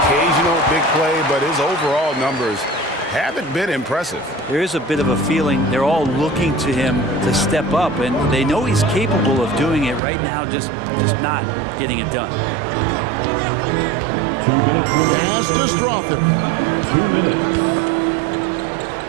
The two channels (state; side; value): drops out; left; at 10.0 s